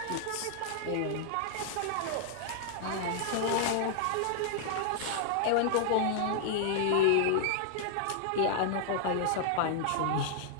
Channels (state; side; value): different; both; correlation -0.01